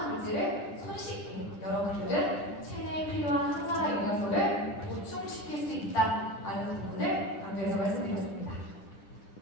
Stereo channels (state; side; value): late; right; 10 ms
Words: 물질을 손쉽게 여러분들은 체내에 필요한 항산화 영양소를 보충시킬 수 있다는 부분을 강조해서 말씀드렸습니다.